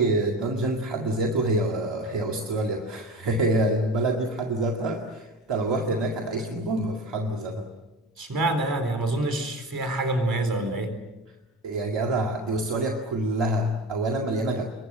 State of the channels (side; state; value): both; normal; correlation 0.31